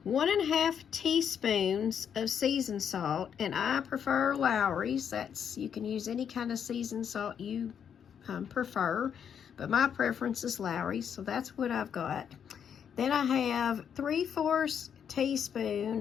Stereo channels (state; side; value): quieter; right; 8.0 dB